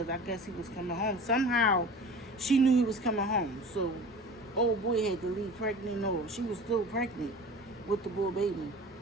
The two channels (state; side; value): normal; both; correlation 0.38